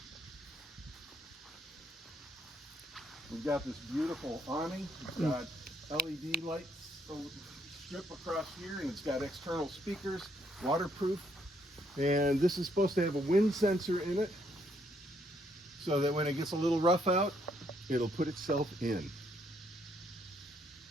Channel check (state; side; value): normal; both; correlation 0.71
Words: We've got this beautiful awning. It's got LED lights strip across here, and it's got external speakers, waterproof. And this is supposed to have a wind sensor in it, so that when it gets a little rough out, it'll put itself in.